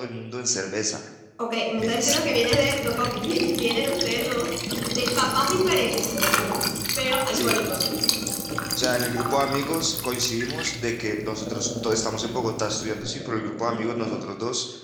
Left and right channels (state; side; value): identical; both; correlation 1.00